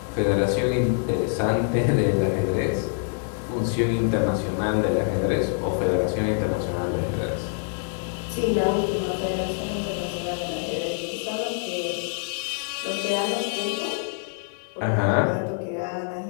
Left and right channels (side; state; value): right; silent; 61 dB below the other